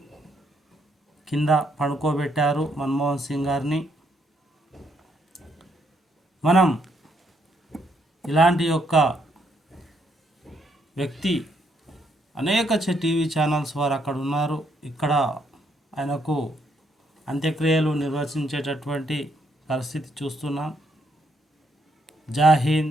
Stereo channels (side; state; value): both; normal; correlation 0.74